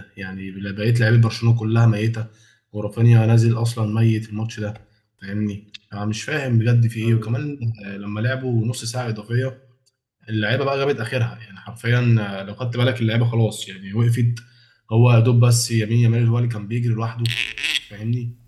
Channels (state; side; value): identical; both; correlation 1.00